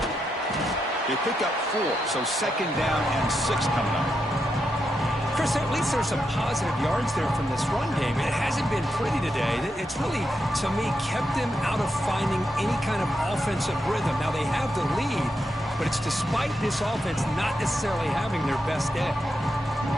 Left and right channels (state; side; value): normal; both; correlation 0.84